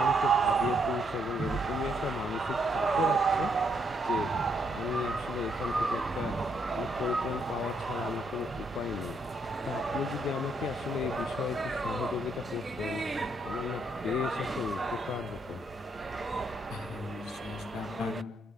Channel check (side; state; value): both; normal; correlation 0.74